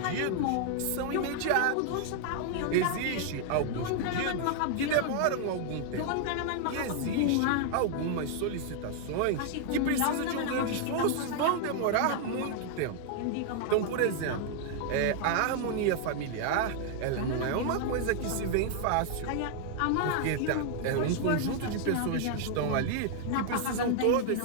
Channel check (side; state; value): both; different; correlation 0.00